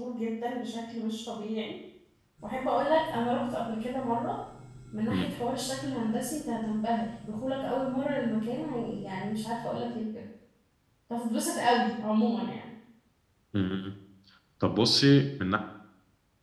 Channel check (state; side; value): identical; both; correlation 1.00